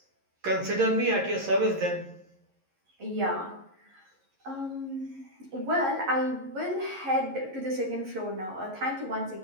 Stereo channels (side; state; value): left; late; 11 ms